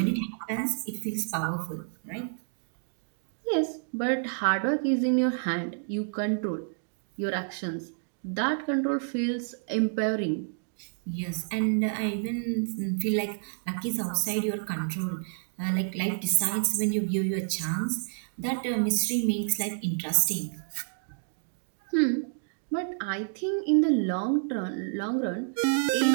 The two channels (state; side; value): silent; left; digital silence